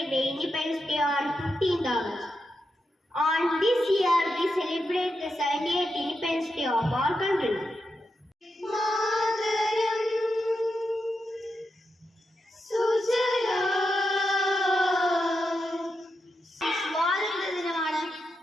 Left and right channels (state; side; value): normal; both; correlation 0.86